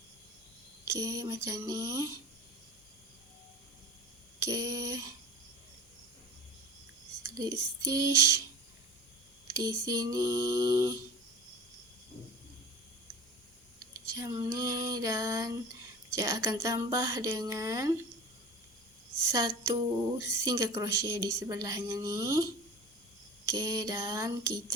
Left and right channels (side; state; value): both; normal; correlation 0.35